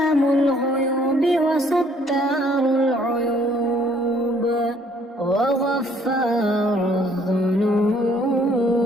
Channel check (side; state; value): both; normal; correlation 0.63